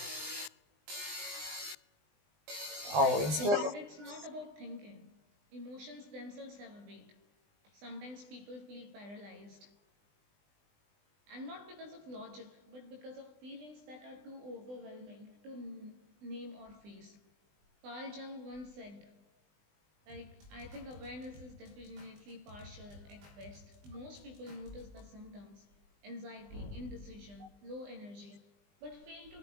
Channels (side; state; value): left; late; 20 ms